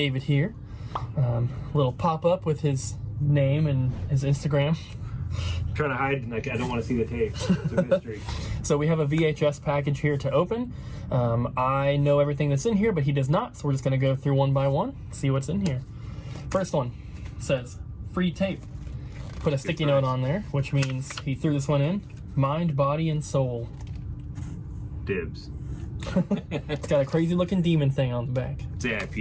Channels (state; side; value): identical; both; correlation 1.00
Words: here. Little pop-up with his name and his Instagram. I'm trying to hide, like, I don't want to see the tape. It's a mystery. So we have a VHS package here to open. I know everything that's in here, but he does not, so we're just going to go through one by one, see what's in here. First one says, free tape. Put a sticky note on there, which means he threw this one in. Mind, body, and soul. Dibs. It's got a crazy looking demon thing on the back. It's